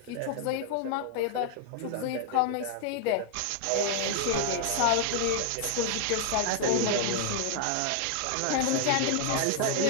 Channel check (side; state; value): both; different; correlation 0.00